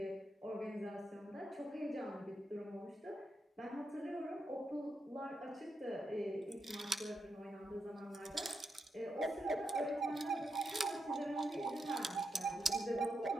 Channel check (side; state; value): both; normal; correlation 0.84